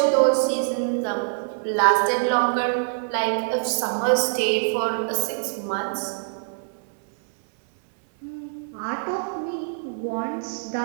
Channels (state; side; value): silent; left; digital silence